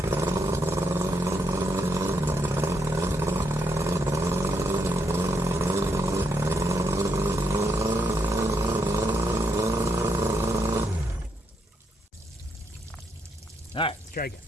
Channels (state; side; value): normal; both; correlation 0.78